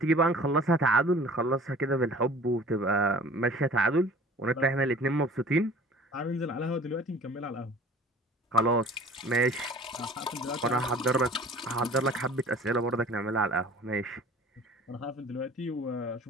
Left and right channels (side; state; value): both; normal; correlation 0.46